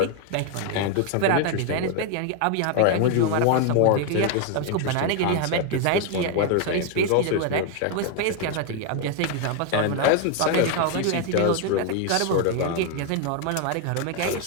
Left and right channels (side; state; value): both; different; correlation 0.01